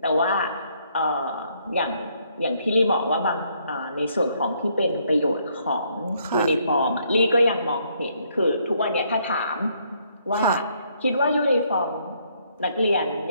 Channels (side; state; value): both; inverted; correlation -0.70